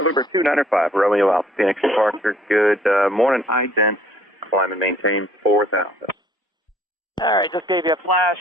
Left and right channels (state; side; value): normal; both; correlation 0.59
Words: 295 Romeo Alpha, Phoenix departure. Good morning, ident. Climb and maintain 4,000. All right, just gave you a flash,